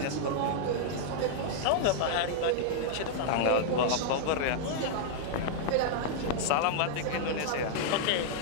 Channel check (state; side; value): different; both; correlation -0.01